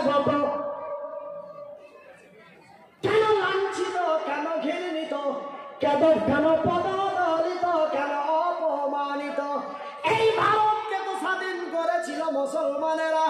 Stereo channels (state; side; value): identical; both; correlation 1.00